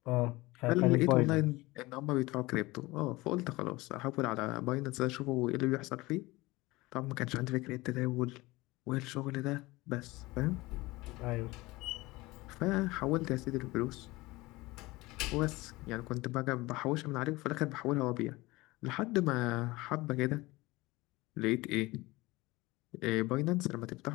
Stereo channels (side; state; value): right; quieter; 21.0 dB